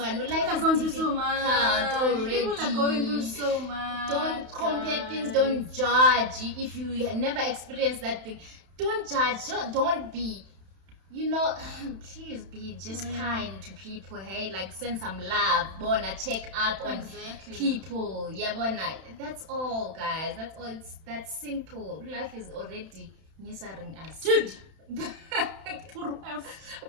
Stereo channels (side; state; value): left; late; 31 ms